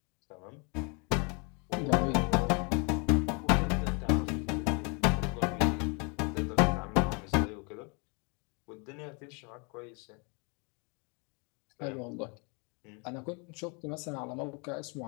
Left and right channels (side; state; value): right; quieter; 33.5 dB